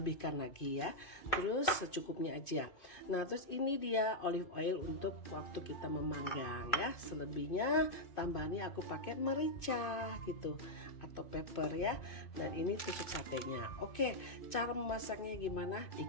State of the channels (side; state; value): right; late; 2.5 ms